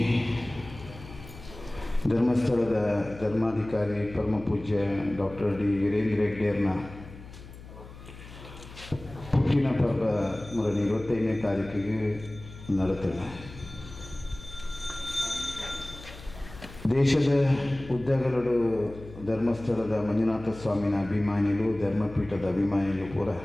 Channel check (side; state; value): left; noise; hum, 16 dB below the sound